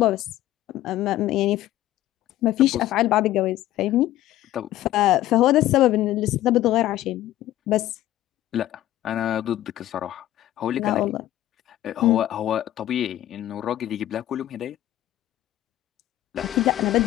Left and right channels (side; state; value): right; quieter; 14.1 dB